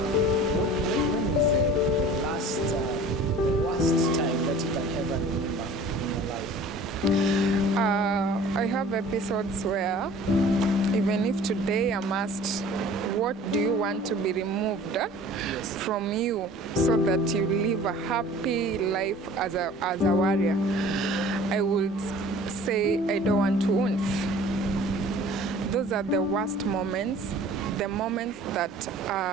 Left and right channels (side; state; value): both; normal; correlation 0.46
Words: when was the worst time that you can ever remember in your life? I have episodes where Even if today I'm asked, what do you want to be removed from you so that you live a happy life as a warrior, I would say I don't want wounds. Those are the worst moments, the moments that